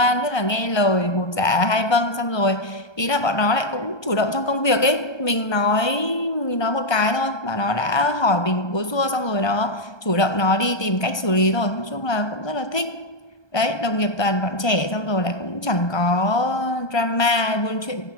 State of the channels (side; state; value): right; late; 1.3 ms